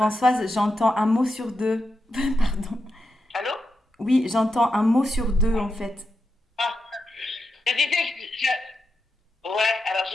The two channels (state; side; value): normal; both; correlation 0.87